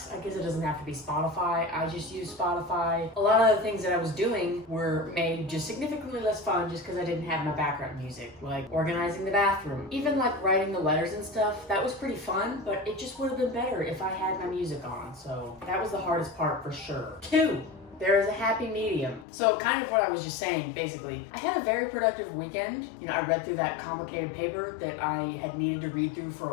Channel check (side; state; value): right; drops out; at 19.2 s